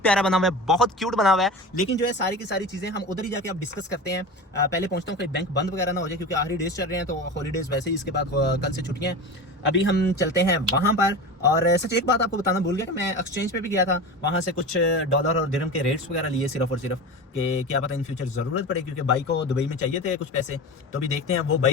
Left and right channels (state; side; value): normal; both; correlation 0.29